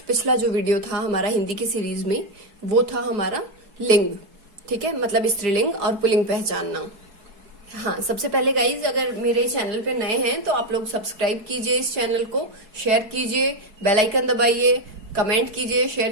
पिछला जो वीडियो था हमारा हिंदी की सीरीज में, वो था हमारा लिंग। ठीक है, मतलब स्त्रीलिंग और पुल्लिंग पहचानना। हाँ, सबसे पहले गाइज, अगर मेरे चैनल पे नए हैं तो आप लोग सब्सक्राइब कीजिए, इस चैनल को शेयर कीजिए, बेल आइकन दबाइए, कमेंट कीजिए,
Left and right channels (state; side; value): late; left; 4.7 ms